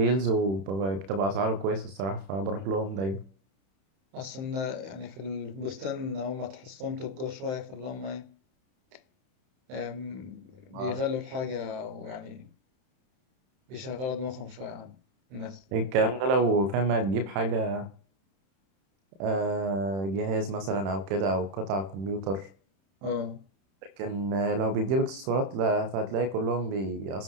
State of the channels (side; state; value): left; late; 31 ms